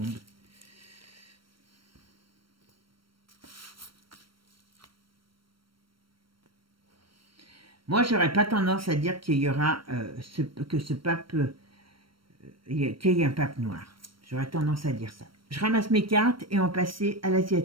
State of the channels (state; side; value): late; left; 0.74 ms